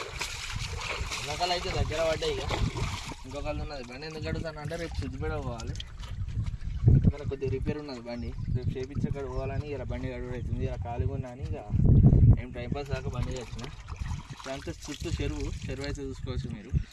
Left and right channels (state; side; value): identical; both; correlation 1.00